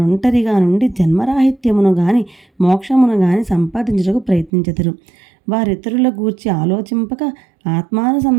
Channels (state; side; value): drops out; left; at 4.5 s